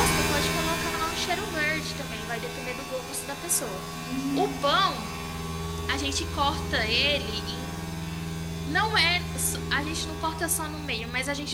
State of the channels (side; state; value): both; identical; correlation 1.00